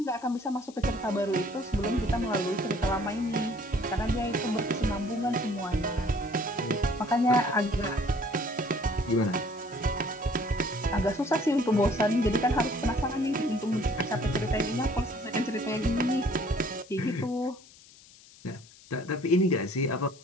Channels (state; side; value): noise; left; hiss, 23 dB below the sound